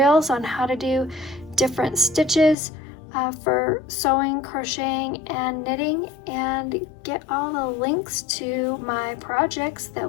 on how to do different stitches for sewing, crocheting, and knitting, and get all the links to my projects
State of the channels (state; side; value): drops out; right; at 2.6 s